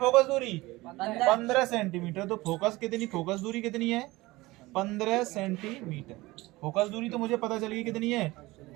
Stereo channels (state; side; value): quieter; left; 20.3 dB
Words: दूरी, 15 सेंटीमीटर। तो फोकस कितनी, फोकस दूरी कितनी है, 15 सेंटीमीटर। फोकस दूरी तो मुझे पता चली कितनी है,